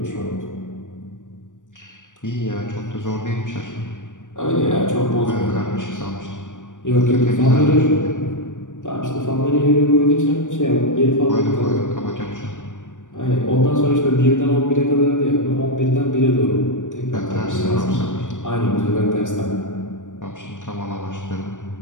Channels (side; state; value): right; late; 0.87 ms